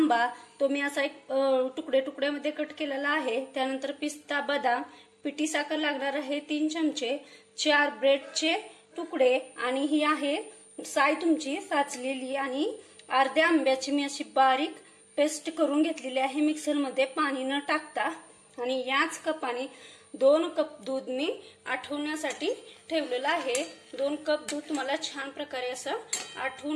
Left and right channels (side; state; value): both; identical; correlation 1.00